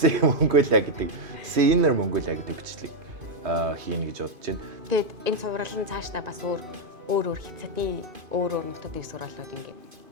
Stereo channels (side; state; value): left; late; 2.5 ms